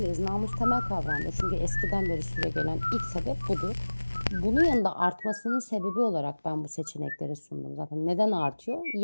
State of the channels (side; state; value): both; inverted; correlation -1.00